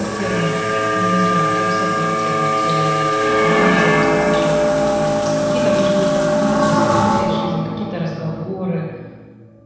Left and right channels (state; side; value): identical; both; correlation 1.00